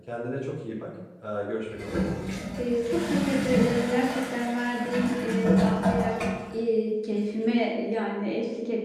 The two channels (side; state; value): both; identical; correlation 1.00